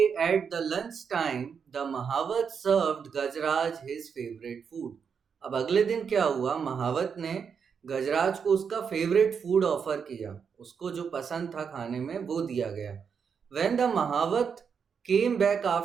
at the lunch time, the Mahavat served Gajraj his favorite food. अब अगले दिन क्या हुआ, महावत ने गजराज को उसका फेवरेट फूड ऑफर किया, उसको जो पसंद था खाने में वो दिया गया। When the Mahavat came back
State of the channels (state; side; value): quieter; left; 6.5 dB